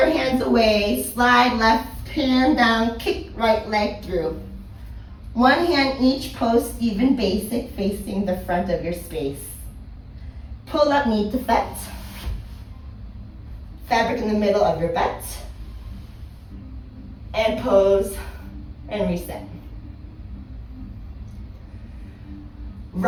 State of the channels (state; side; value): identical; both; correlation 1.00